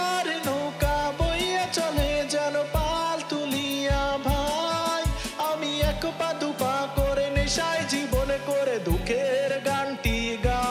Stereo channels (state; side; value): identical; both; correlation 1.00